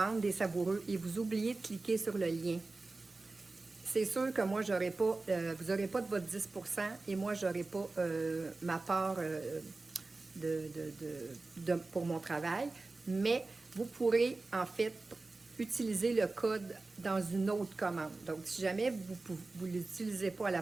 des savoureux et vous oubliez de cliquer sur le lien, c'est sûr que moi, j'aurai pas, vous n'aurez pas de votre 10 % et moi, je n'aurai pas ma part pour mon travail, mais vous pourrez en fait utiliser le code dans une autre commande. Donc, si jamais vous ne l'utilisez pas à la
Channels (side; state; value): left; quieter; 3.4 dB